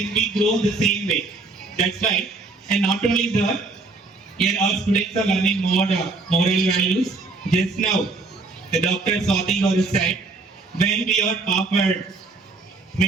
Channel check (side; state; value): left; quieter; 3.6 dB